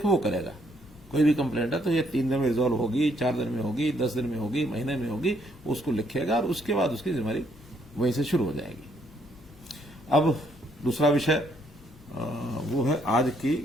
वो करेगा। कोई भी कंप्लेंट है तो ये 3 दिन में रिजॉल्व होगी, 4 दिन में होगी, 10 दिन में होगी, महीने में होगी, उसको लिखेगा और उसके बाद उसकी जिम्मेदारी वहीं से शुरू हो जाएगी। अब दूसरा विषय वो है आज की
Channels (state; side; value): normal; both; correlation 0.70